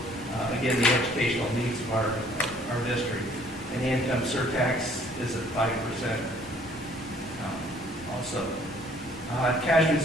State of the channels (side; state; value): both; normal; correlation 0.59